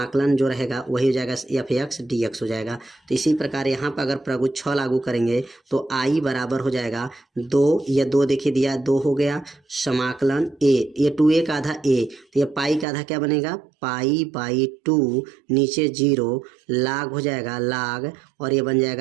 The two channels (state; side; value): drops out; left; at 12.9 s